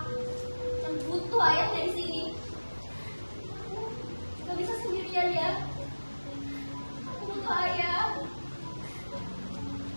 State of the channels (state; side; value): inverted; both; correlation -1.00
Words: yang butuh ayahnya di sini. Gak bisa sendirian ya. Aku butuh ayah.